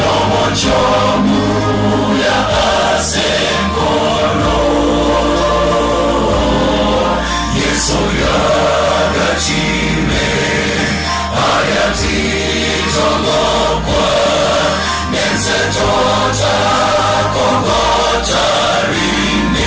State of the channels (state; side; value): identical; both; correlation 1.00